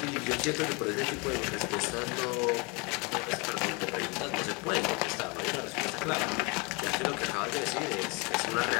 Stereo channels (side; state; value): right; quieter; 29.4 dB